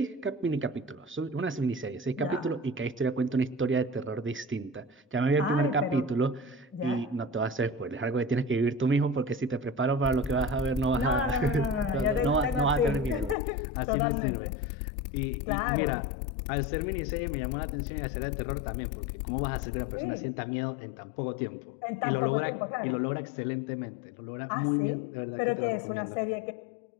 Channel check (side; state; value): right; drops out; at 13.4 s